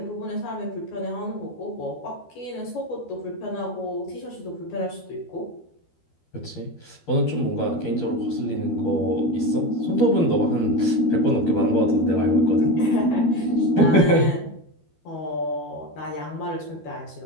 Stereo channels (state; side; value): late; right; 12 ms